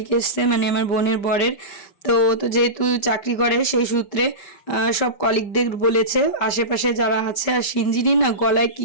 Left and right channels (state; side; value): late; right; 5.1 ms